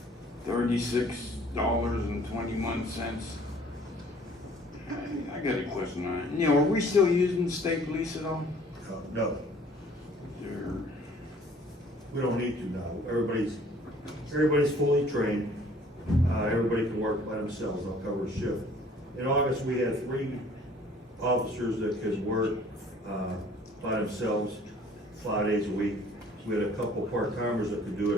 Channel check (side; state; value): both; normal; correlation 0.55